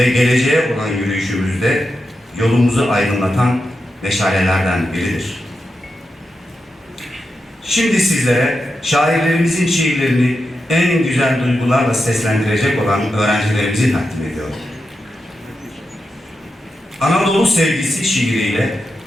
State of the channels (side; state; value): both; normal; correlation 0.88